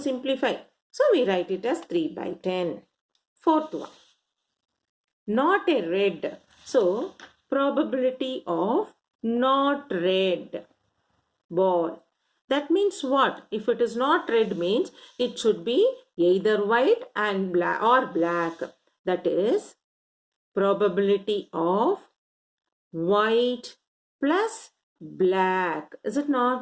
simplify. So we write it as 3 by 10. Fourth one. Not a red. So probability of not red ball. That means what? If it is not red means it should be either white and black or black. That is probability of white plus black. Is it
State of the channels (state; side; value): identical; both; correlation 1.00